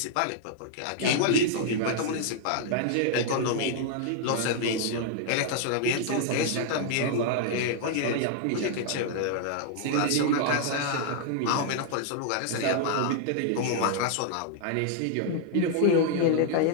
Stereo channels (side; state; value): both; different; correlation 0.00